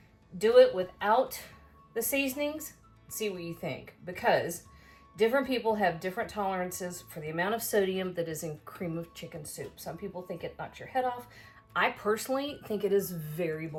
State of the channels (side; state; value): both; identical; correlation 1.00